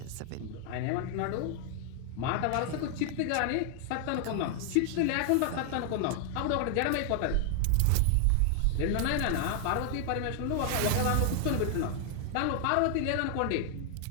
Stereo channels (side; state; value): both; different; correlation 0.00